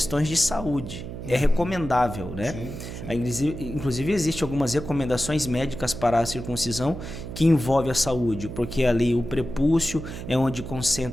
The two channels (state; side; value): noise; right; hum, 9 dB below the sound